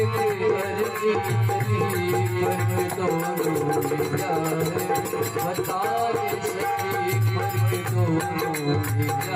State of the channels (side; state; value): both; identical; correlation 1.00